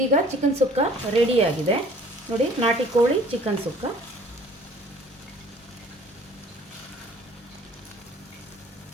ಚಿಕನ್ ಸುಕ್ಕ ರೆಡಿಯಾಗಿದೆ. ನೋಡಿ, ನಾಟಿ ಕೋಳಿ ಚಿಕನ್ ಸುಕ್ಕ.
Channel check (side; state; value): both; normal; correlation 0.53